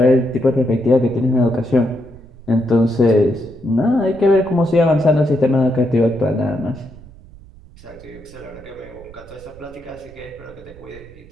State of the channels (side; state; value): right; noise; rumble, 21 dB below the sound